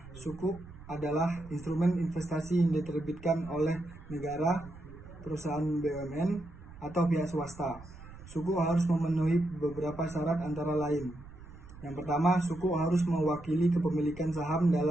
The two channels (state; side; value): noise; right; rumble, 17 dB below the sound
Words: Suku adalah instrumen investasi yang diterbitkan oleh negara, perusahaan BUMN, atau pihak swasta. Suku harus memenuhi beberapa syarat antara lain. Yang pertama, suku harus mewakili kepemilikan saham